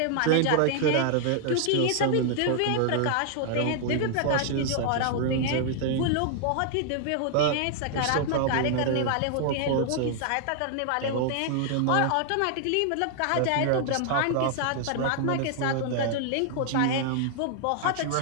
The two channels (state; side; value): different; both; correlation -0.01